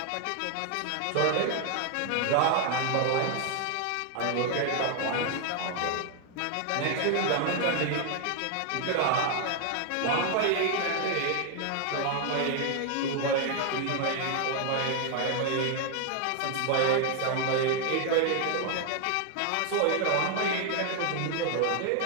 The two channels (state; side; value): different; both; correlation 0.00